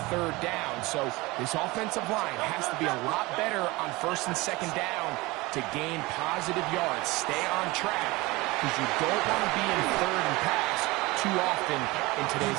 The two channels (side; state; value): left; quieter; 22.2 dB